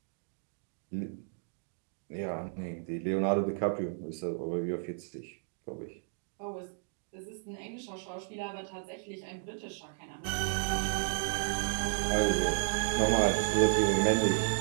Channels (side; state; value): left; silent; digital silence